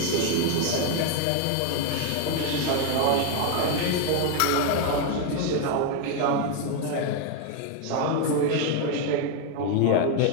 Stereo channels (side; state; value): both; different; correlation 0.01